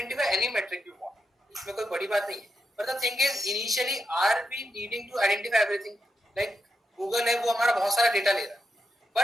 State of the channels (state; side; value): normal; both; correlation 0.85